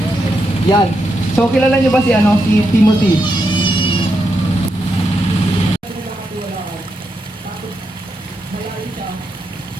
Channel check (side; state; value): both; normal; correlation 0.83